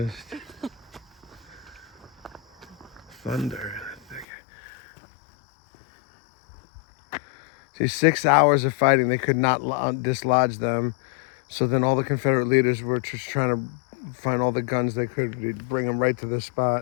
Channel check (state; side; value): drops out; right; at 4.2 s